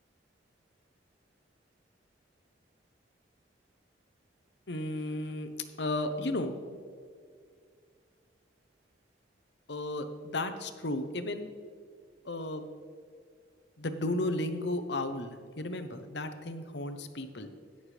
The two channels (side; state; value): both; normal; correlation 0.29